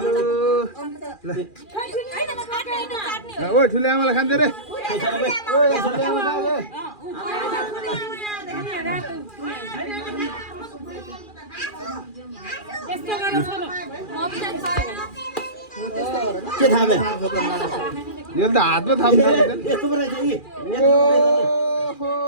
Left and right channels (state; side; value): late; right; 2.4 ms